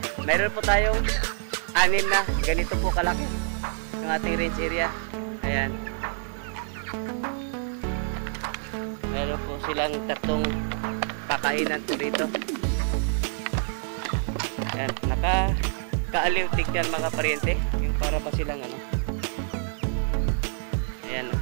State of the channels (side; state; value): left; silent; 60 dB below the other